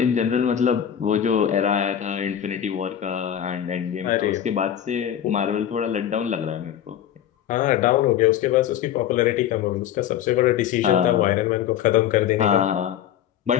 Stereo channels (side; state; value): right; quieter; 10.2 dB